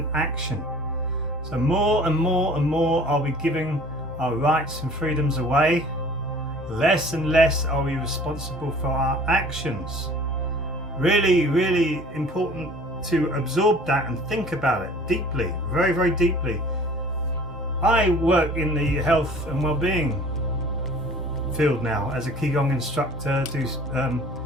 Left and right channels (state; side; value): normal; both; correlation 0.48